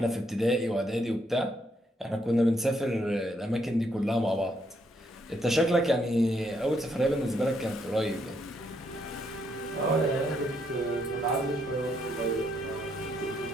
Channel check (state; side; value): normal; both; correlation 0.74